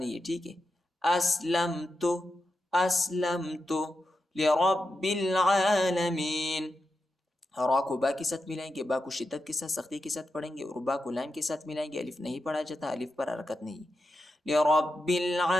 ہے، ٹھیک ہے. أَسْلَمْتُ، أَسْلَمْتُ لِرَبِّ الْعَالَمِينَ، را کو با کے ساتھ ملائیں گے، با کو شدت کے ساتھ سختی کے ساتھ پڑھیں گے اور با کو لام کے ساتھ ملائیں گے، الف نہیں پڑھا جاتا، الف پر حرکت نہیں. لِرَبِّ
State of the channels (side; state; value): both; normal; correlation 0.88